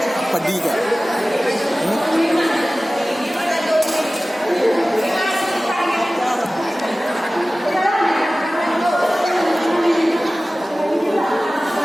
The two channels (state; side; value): normal; both; correlation 0.97